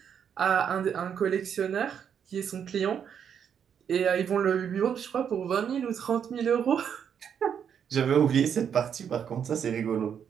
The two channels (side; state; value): left; quieter; 8.0 dB